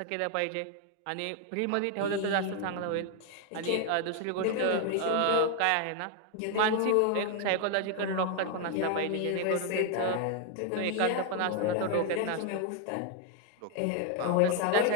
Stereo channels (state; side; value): different; both; correlation 0.00